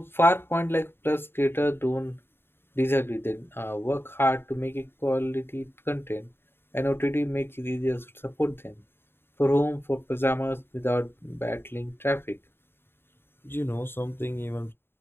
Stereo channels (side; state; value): right; late; 0.11 ms